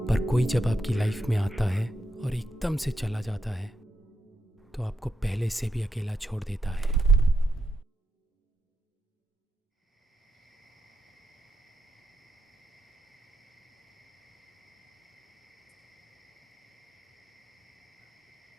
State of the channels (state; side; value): normal; both; correlation 0.82